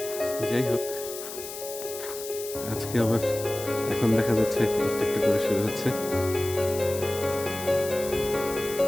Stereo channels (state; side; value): noise; left; hiss, 10 dB below the sound